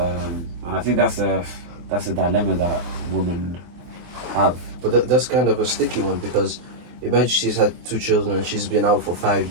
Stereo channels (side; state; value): left; late; 23 ms